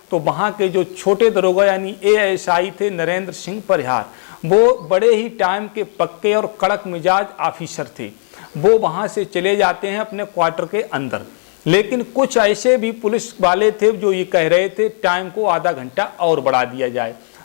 तो वहाँ के जो छोटे दरोगा यानी एएसआई थे नरेंद्र सिंह परिहार, वो बड़े ही टाइम के पक्के और कड़क मिजाज ऑफिसर थे। वो वहाँ से चले जाते हैं अपने क्वार्टर के अंदर। लेकिन कुछ ऐसे भी पुलिस वाले थे जो ये कह रहे थे टाइम को आधा घंटा और बढ़ा दिया जाए।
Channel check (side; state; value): right; silent; 68 dB below the other